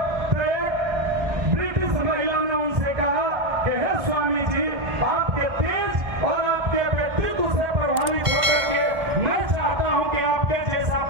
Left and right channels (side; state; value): left; late; 1.5 ms